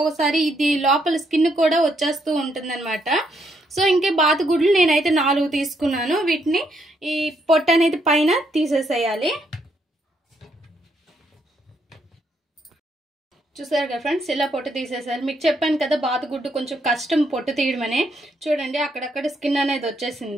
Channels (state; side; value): normal; both; correlation 0.74